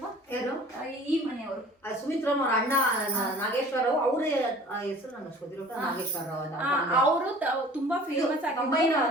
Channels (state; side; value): normal; both; correlation 0.47